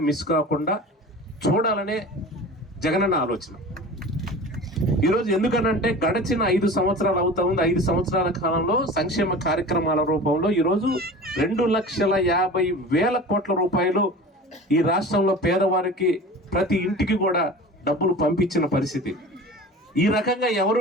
మిస్ కాకుండా చూడాలనే జగనన్న ఆలోచన. ఈరోజు ఎందుకనంటే గడిచిన 5 సంవత్సరాలు అవుతా ఉంది. 5 సంవత్సరాల కాలంలో సంక్షేమ కార్యక్రమాల రూపంలో ఈరోజు 2,50,000 కోట్ల రూపాయలు ఈ రాష్ట్రంలో పేదవారికి ప్రతి ఇంటికి కూడా డబ్బులు పంపించిన పరిస్థితి. ఈ రకంగా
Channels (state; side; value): normal; both; correlation 0.37